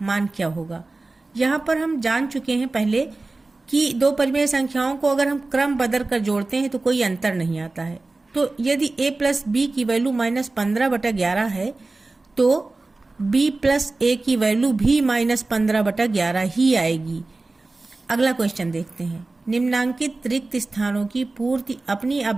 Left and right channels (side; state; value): left; quieter; 3.3 dB